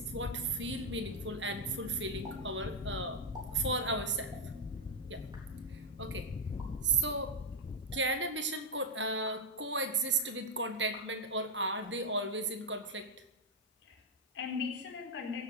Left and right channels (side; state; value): both; normal; correlation 0.00